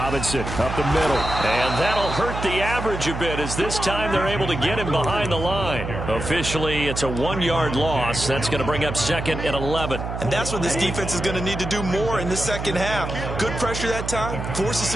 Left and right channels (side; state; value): right; noise; hum, 6 dB below the sound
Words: up the middle, and that'll hurt the average a bit as this time they're able to get him behind the line. Officially, it's a 1-yard loss. That's going to bring up 2nd and 11. And that's what this defense is going to need to do more in the second half. Good pressure that time, forces